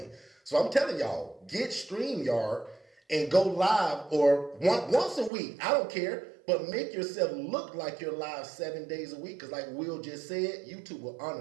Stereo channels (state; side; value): drops out; left; at 5.3 s